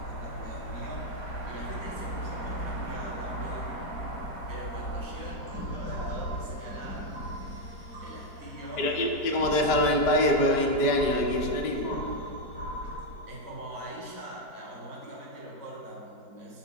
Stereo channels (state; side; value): late; right; 4.9 ms